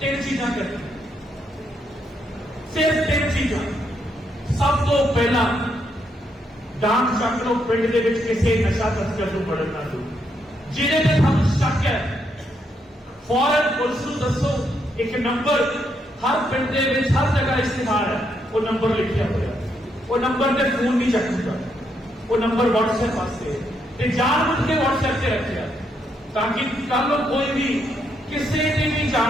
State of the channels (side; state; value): both; normal; correlation 0.77